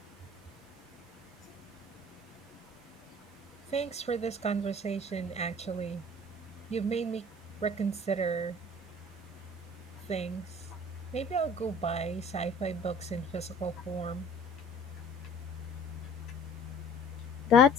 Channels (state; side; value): normal; both; correlation 0.49